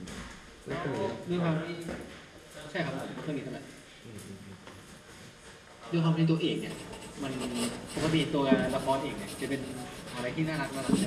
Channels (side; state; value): both; identical; correlation 1.00